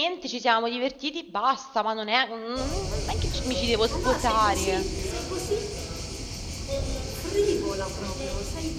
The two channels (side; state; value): both; identical; correlation 1.00